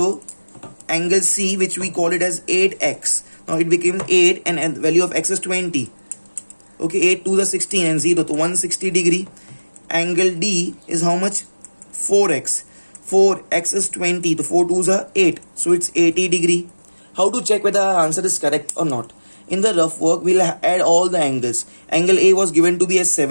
angle C, which we call it as 8x, now it became 8 and value of x is 20. Okay, 8 to the 16 and 0 to 160 degree. Angle D is how much? 4x. 4x is 20. The 4 2s are 8. So it's 80 degree. How to check whether our answer is correct or not? In the rough work, we'll add all the angles. Angle A was given to be as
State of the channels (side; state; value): both; inverted; correlation -1.00